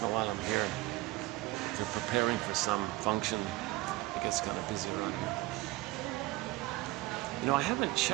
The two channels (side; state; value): left; quieter; 19.4 dB